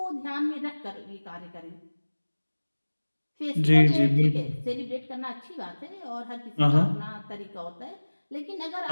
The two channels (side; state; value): both; inverted; correlation -1.00